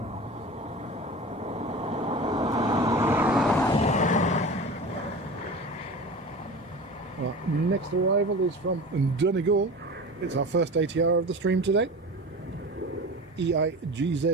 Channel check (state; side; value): normal; both; correlation 0.33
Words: Our next arrival is from Donegal. It's our first ATR of the stream today.